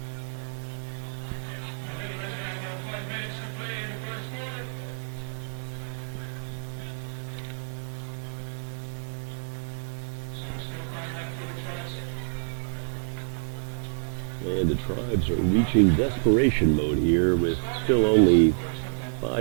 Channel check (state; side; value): silent; left; 59 dB below the other